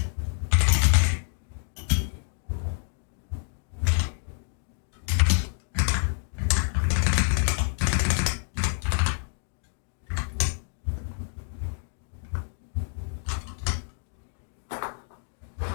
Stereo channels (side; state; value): right; silent; 58 dB below the other